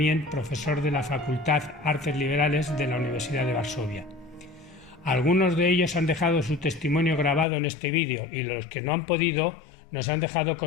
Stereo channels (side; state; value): right; drops out; at 7.5 s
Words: profesor de la Facultad Artes Liberales de la Universidad de Varsovia. Algunos de ellos han dejado su testimonio grabado en este vídeo y los que no han podido nos han dejado